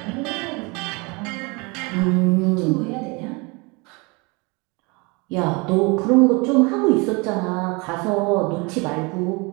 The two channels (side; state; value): left; quieter; 28.1 dB